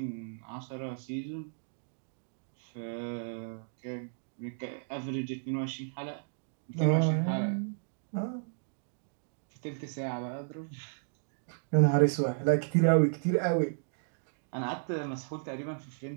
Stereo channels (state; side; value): silent; left; digital silence